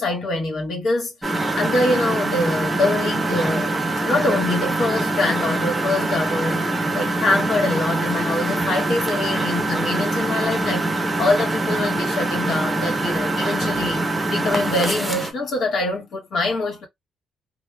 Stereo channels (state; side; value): normal; both; correlation 0.79